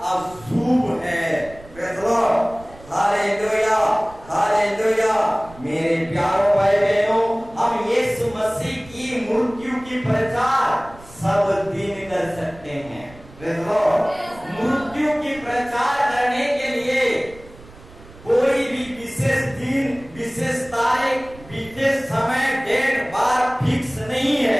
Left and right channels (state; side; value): noise; right; rumble, 21 dB below the sound